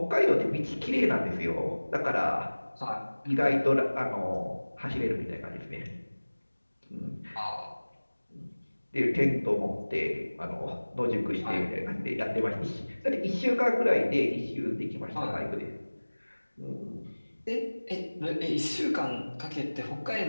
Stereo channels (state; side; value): inverted; both; correlation -1.00